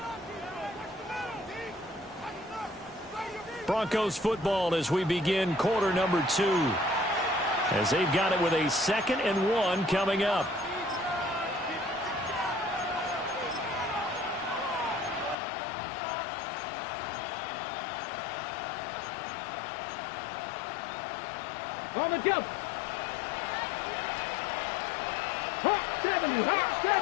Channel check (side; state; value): right; drops out; at 15.4 s